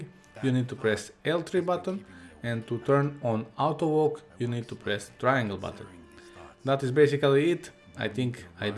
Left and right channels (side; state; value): both; identical; correlation 1.00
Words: you need to press L3 button, and to turn on auto walk, you need to press triangle button. That is basically it. I think I